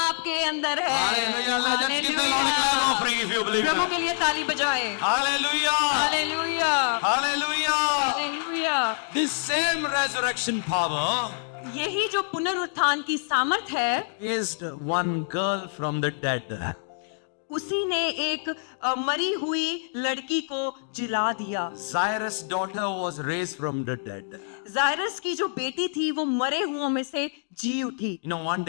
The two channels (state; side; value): silent; right; digital silence